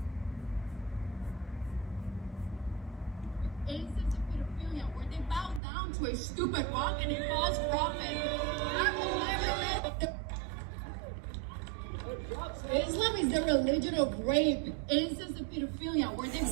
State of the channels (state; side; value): drops out; left; at 5.6 s